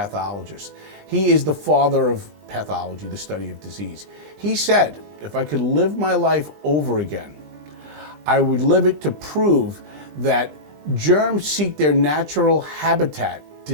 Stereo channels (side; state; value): left; late; 20 ms